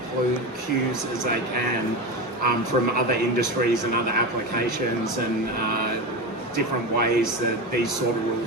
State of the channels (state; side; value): normal; both; correlation 0.21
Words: cues as they can from other industries and other applications and different ways that these sort of